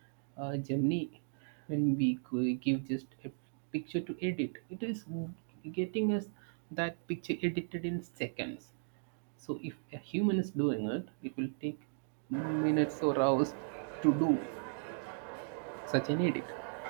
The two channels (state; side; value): silent; left; digital silence